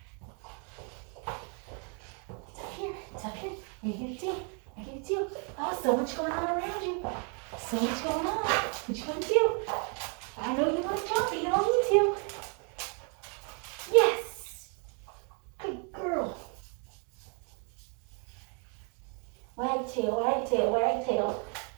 It's up here. It's up here. I get it too. I get it too. Oh, so much going on around you. So much going on. What you gonna do? I know you want to jump, but you don't need to. Yes. Good girl. Wag tail, wag tail, wag tail.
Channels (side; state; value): left; quieter; 39.0 dB